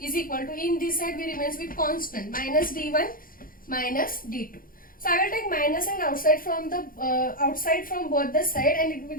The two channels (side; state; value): right; late; 0.41 ms